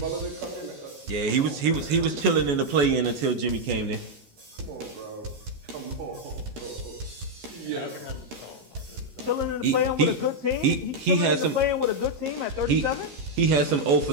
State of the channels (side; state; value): left; late; 14 ms